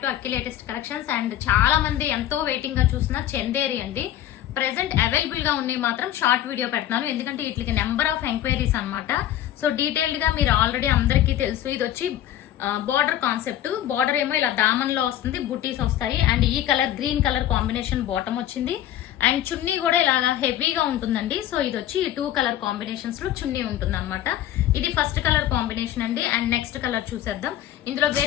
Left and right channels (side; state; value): right; quieter; 12.2 dB